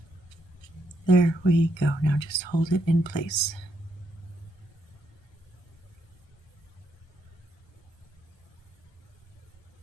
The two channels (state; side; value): late; right; 1.3 ms